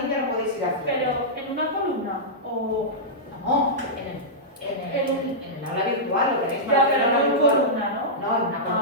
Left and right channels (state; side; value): normal; both; correlation -0.12